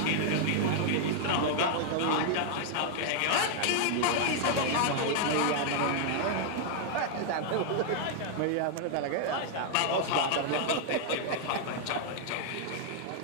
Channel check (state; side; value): different; both; correlation 0.00